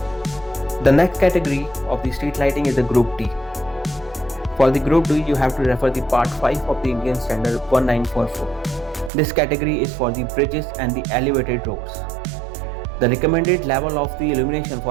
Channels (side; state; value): left; drops out; at 9.1 s